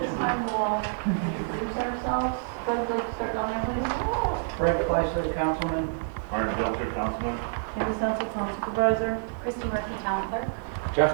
time we'll all introduce ourselves. Fred, would you like to start down there, please? Fred Fleischer, Councilman. Byron, Councilman. Mattison, Town Supervisor. Christy Murphy, Town Clerk.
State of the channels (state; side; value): silent; left; digital silence